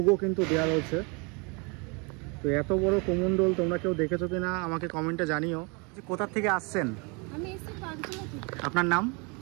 কিন্তু দেওয়া রয়েছে। তো এত বড় কুমণ্ডল তোমরা কেউ দেখেছো কিনা আমাকে কমেন্টে জানিও। কোথা থেকে আসছেন? আমি এসেছি পাঁচগুলো থেকে। আপনার নাম?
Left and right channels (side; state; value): left; quieter; 31.5 dB